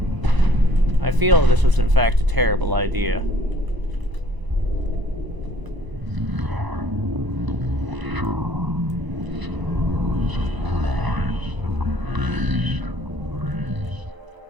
I feel this was in fact a terrible idea.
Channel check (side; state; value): left; late; 1.0 ms